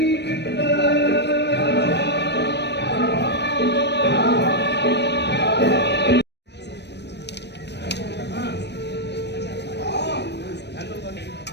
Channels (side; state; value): right; late; 0.50 ms